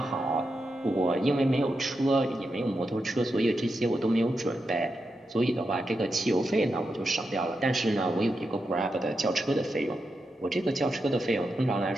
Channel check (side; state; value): both; normal; correlation 0.87